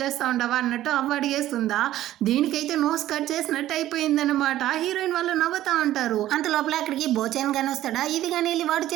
చేస్తూ ఉండవా అన్నట్టు అవ్వ అడిగేస్తుందా. దీనికైతే నోస్ కట్ చేసినట్టు అయిపోయిందనమాట. హీరోయిన్ వాళ్ళు నవ్వుతా ఉంటారు. అంత లోపల అక్కడికి బోచాన్ కానీ వస్తాడా, ఇది కానీ వెళ్ళి వాడి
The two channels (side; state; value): left; quieter; 13.8 dB